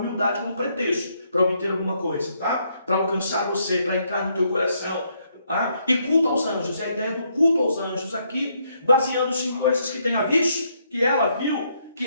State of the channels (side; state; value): both; inverted; correlation -0.74